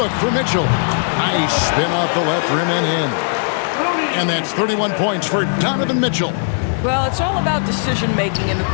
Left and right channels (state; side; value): silent; right; digital silence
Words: for Mitchell. Nice spin off the left rim and in. And that's 31 points for Donovan Mitchell. Well, it's all about decision-making in the